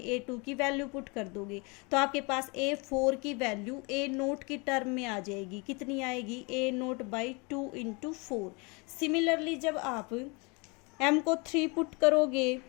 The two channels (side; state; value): right; quieter; 29.5 dB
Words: a2 की वैल्यू पुट कर दोगे, तो आपके पास a4 की वैल्यू a नोट की टर्म में आ जाएगी। कितनी आएगी, a note by 2 into 4। Similarly जब आप m को 3 पुट करोगे